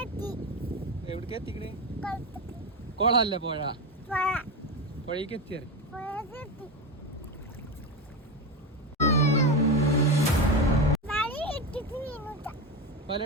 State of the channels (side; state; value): both; normal; correlation 0.17